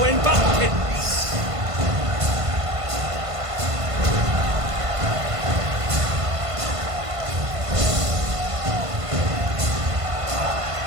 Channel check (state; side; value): late; left; 1.5 ms